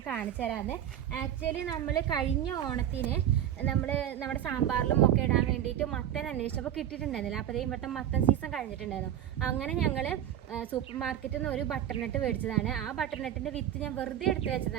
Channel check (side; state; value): left; quieter; 10.8 dB